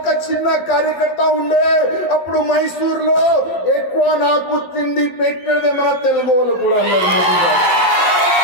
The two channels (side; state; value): right; late; 12 ms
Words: చిన్న కార్యకర్త ఉండే, అప్పుడు మైసూర్లో ఎక్కువ నాకు తిండి పెట్టేదే మన తెలుగు వాళ్ళు కూడా అన్నారు మోదీ గారు।